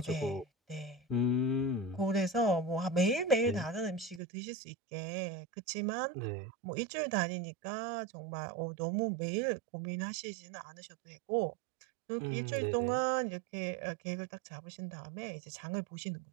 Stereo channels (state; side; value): drops out; left; at 4.2 s